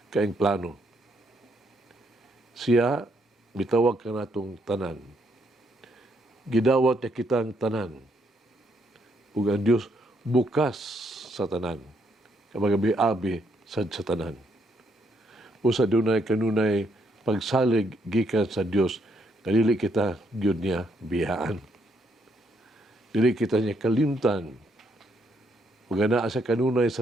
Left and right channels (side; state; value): both; normal; correlation 0.73